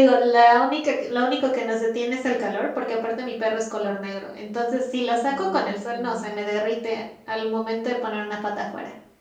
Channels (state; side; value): identical; both; correlation 1.00